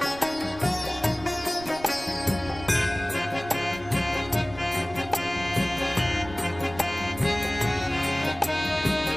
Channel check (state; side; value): noise; right; rumble, 16 dB below the sound